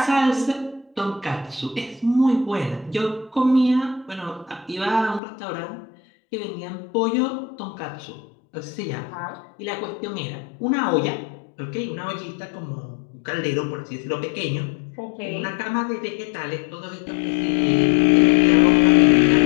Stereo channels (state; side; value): drops out; right; at 5.2 s